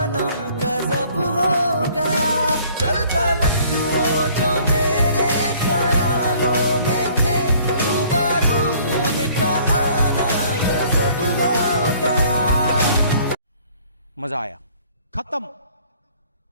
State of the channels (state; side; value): inverted; both; correlation -0.57